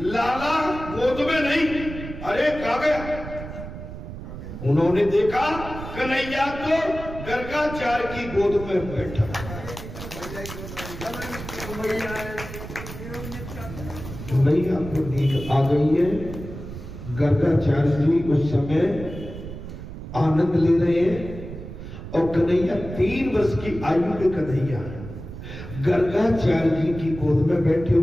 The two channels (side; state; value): right; noise; rumble, 11 dB below the sound